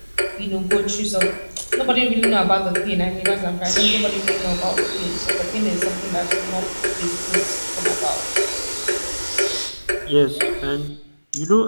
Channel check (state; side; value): inverted; both; correlation -1.00